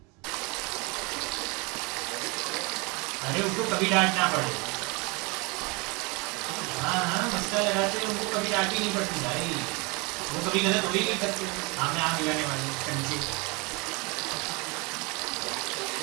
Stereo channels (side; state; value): left; quieter; 28.3 dB